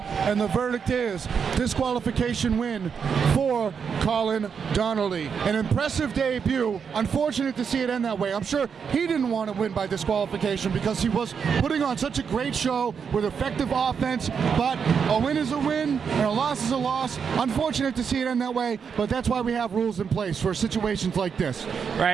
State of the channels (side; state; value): left; quieter; 6.6 dB